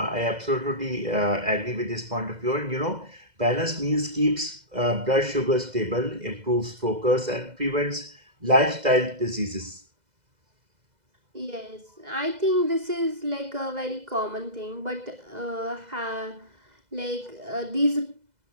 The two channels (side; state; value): left; late; 2.0 ms